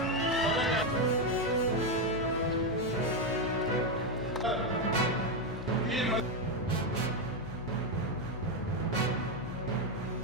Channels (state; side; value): noise; left; hum, 13 dB below the sound